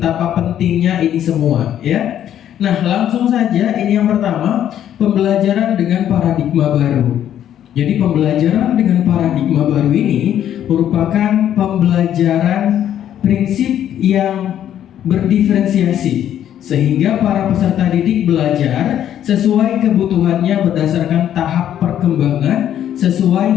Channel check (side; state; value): right; quieter; 10.6 dB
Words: pentingnya ini semua ya. Nah, langsung saja, ini yang pertama, pembelajaran dengan paradigma baru. Jadi pembelajaran dengan paradigma baru ini merupakan pembelajaran prinsip yang berdiferensiasi, sehingga para peserta didik belajar sesuai kebutuhannya berdasarkan tahap perkembangan